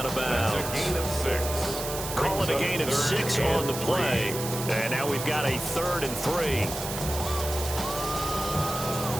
of bounds. That's a gain of 6. Call it a gain of 6 on the play. And now we've got a 3rd and 3.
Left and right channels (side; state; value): right; noise; hiss, 7 dB below the sound